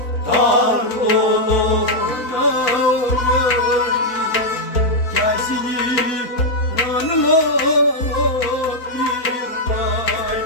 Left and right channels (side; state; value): right; late; 4.1 ms